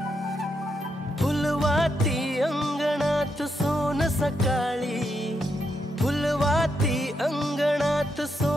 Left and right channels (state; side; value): normal; both; correlation 0.81